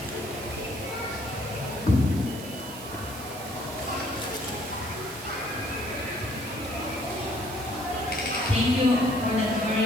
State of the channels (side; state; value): right; noise; hiss, 13 dB below the sound